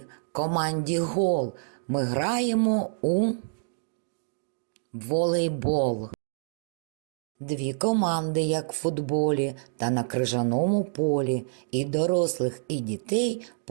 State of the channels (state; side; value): silent; left; digital silence